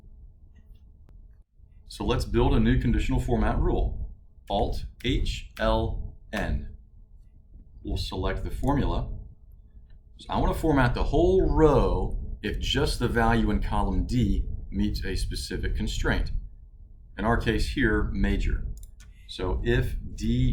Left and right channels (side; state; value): both; identical; correlation 1.00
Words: So let's build a new conditional format rule. Alt-H-L-N. We'll select the formula. So I want to format the whole row if just the value in column D meets a specific constraint. In our case here, major. So if